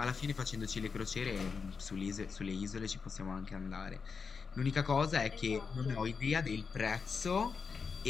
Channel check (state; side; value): quieter; right; 5.4 dB